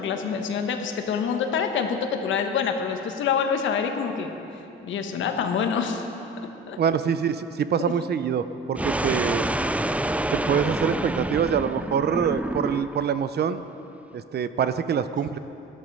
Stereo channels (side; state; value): both; normal; correlation 0.33